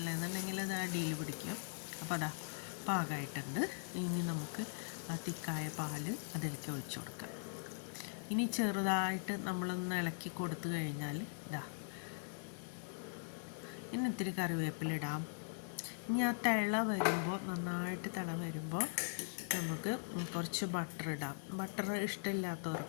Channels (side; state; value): right; silent; digital silence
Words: എന്നുണ്ടെങ്കിൽ അത് അടിയിൽ പിടിക്കും. അപ്പോൾ അതാ പാകമായിട്ടുണ്ട്. ഇനി നമുക്ക് ആ തിക്കായ പാൽ അതിലേക്ക് ഒഴിച്ചു കൊടുക്കാം. ഇനി ചെറുതായിട്ട് നമ്മളൊന്ന് ഇളക്കി കൊടുത്തു കഴിഞ്ഞാൽ ഇനി ഇത്തിരി കറിവേപ്പിലിടാം. ഇനി ആ നന്നായിട്ട് തിള വരുമ്പോൾ നമുക്ക് കുറച്ച് ബട്ടർ ഇടാം. ബട്ടർ